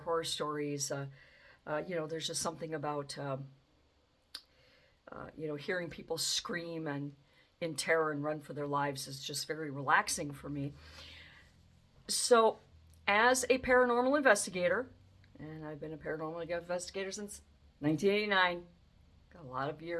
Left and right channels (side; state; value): both; identical; correlation 1.00